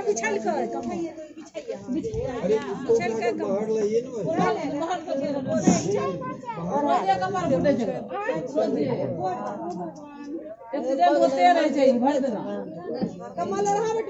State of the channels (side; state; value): both; identical; correlation 1.00